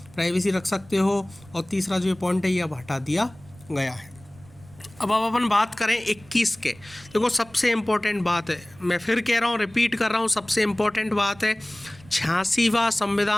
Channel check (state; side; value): noise; right; rumble, 24 dB below the sound